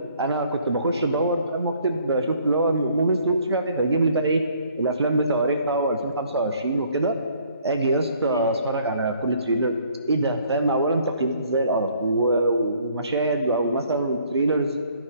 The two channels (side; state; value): both; inverted; correlation -0.61